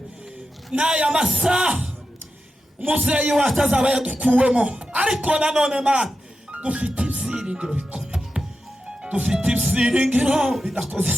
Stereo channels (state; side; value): normal; both; correlation 0.90